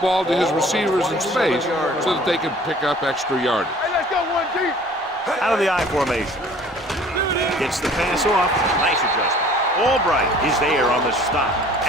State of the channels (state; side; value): normal; both; correlation 0.51